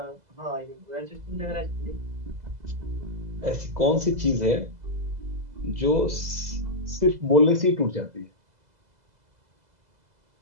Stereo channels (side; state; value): left; late; 2.0 ms